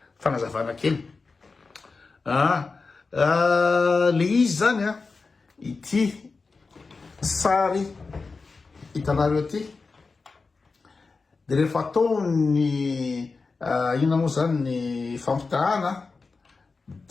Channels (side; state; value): right; quieter; 4.2 dB